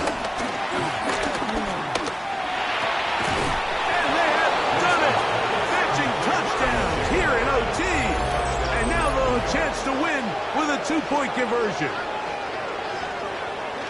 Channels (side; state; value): both; identical; correlation 1.00